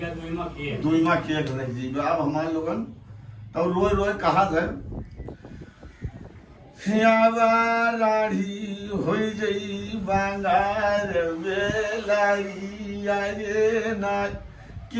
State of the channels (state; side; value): identical; both; correlation 1.00